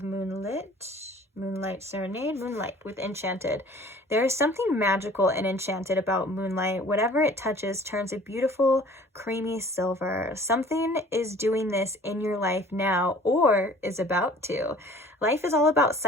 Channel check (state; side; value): normal; both; correlation 0.50